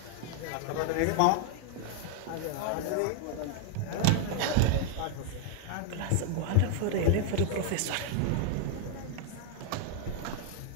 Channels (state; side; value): different; both; correlation 0.00